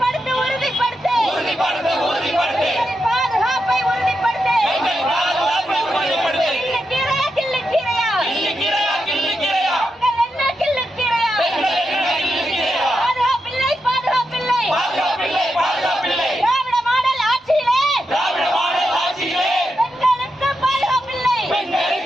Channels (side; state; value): both; normal; correlation 0.86